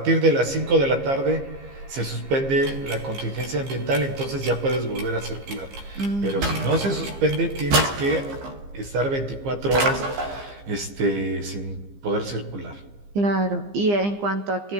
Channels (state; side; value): late; left; 15 ms